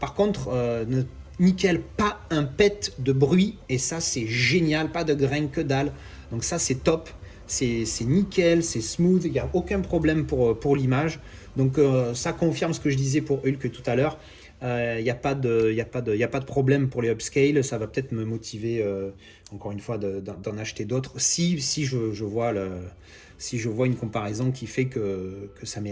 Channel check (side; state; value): both; identical; correlation 1.00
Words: contre, nickel, pas un pet de bruit, et ça c'est génial, pas de grain que dalle. Donc ça c'est top. C'est nickel, c'est smooth, il n'y a aucun problème pour l'image. Donc ça confirme ce que je disais pour Hulk tout à l'heure. Il n'y a pas de problème pour les upscale. Ça va peut-être me motiver, encore une fois, d'en acheter d'autres. Si je vois une comparaison qui fait que ça